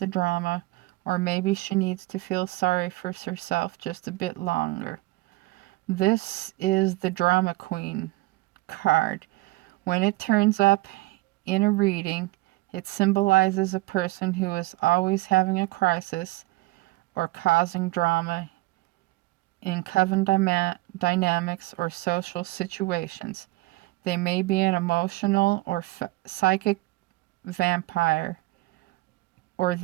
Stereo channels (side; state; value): left; quieter; 20.7 dB